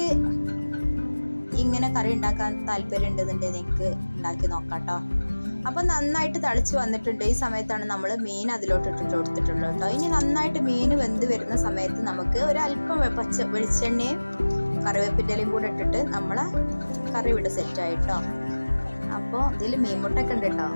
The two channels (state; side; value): inverted; both; correlation -1.00